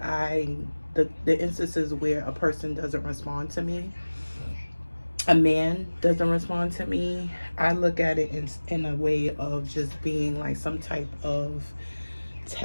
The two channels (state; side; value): inverted; both; correlation -1.00